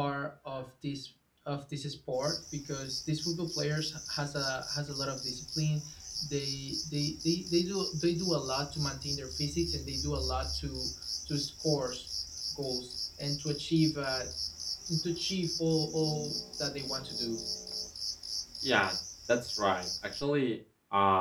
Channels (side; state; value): both; identical; correlation 1.00